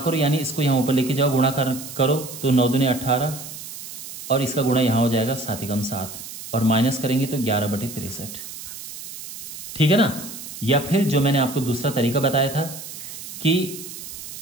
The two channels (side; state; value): right; noise; hiss, 11 dB below the sound